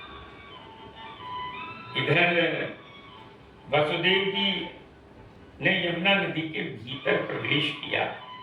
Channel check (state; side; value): identical; both; correlation 1.00